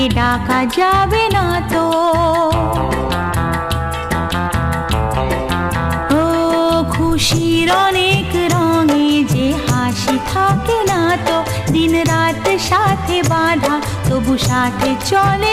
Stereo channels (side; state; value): both; identical; correlation 1.00